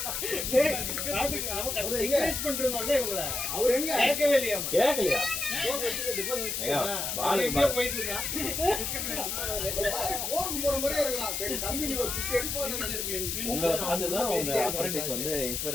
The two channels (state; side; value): noise; left; hiss, 2 dB below the sound